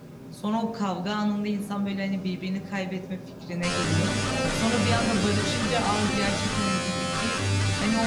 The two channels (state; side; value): identical; both; correlation 1.00